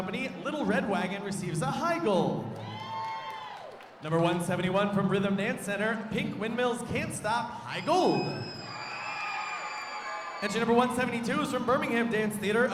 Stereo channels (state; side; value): identical; both; correlation 1.00